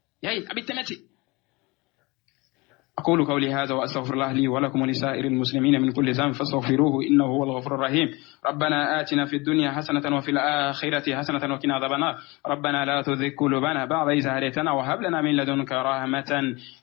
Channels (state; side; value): quieter; right; 24.8 dB